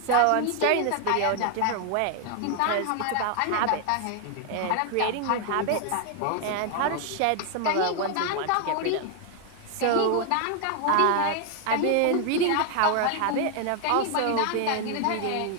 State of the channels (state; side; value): different; both; correlation 0.00